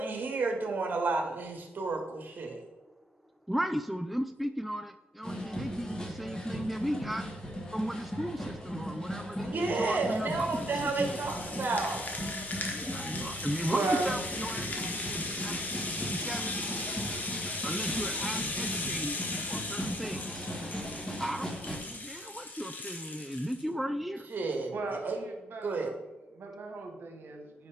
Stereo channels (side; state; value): both; normal; correlation 0.71